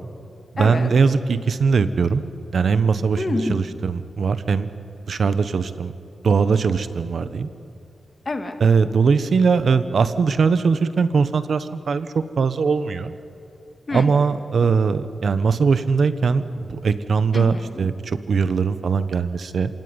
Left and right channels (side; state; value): left; quieter; 4.7 dB